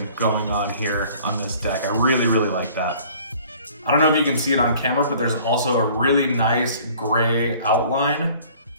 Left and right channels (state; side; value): inverted; both; correlation -0.52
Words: going on here on this deck. I really, really like that. I don't know if you can see it on camera, but there's also a really nice gray outline